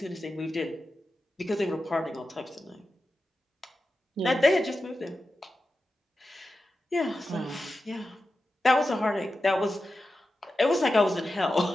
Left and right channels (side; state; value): both; normal; correlation 0.92